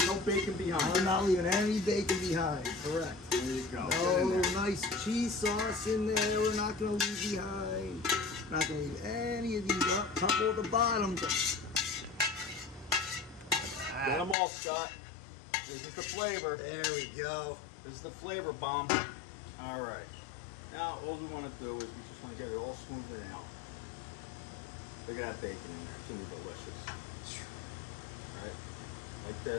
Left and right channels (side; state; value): right; drops out; at 14.4 s